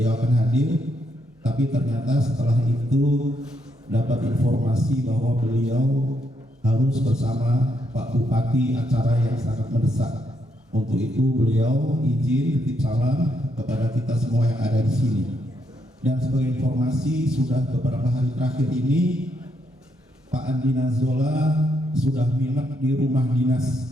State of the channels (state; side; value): normal; both; correlation 0.77